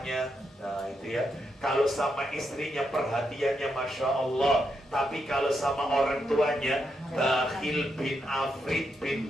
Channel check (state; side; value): normal; both; correlation 0.82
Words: Nah itu ya. Kalau sama istrinya perhatiannya Masya Allah, tapi kalau sama orang tuanya bakhil bin afrit